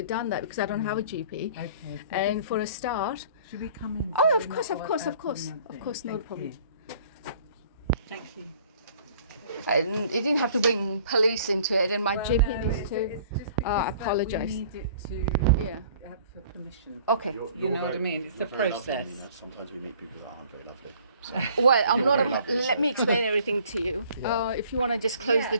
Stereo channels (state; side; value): inverted; both; correlation -0.54